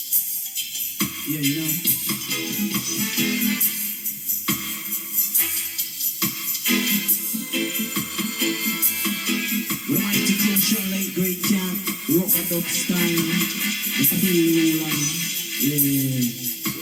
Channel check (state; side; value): identical; both; correlation 1.00